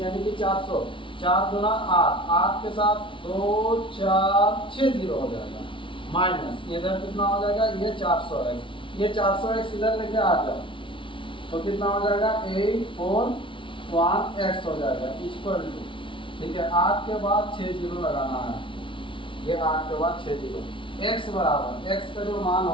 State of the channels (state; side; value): late; right; 0.25 ms